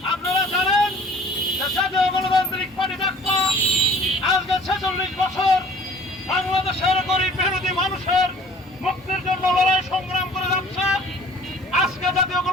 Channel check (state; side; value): normal; both; correlation 0.50